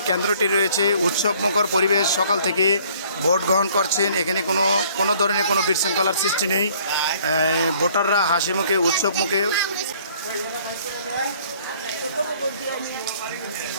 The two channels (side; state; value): both; inverted; correlation -0.58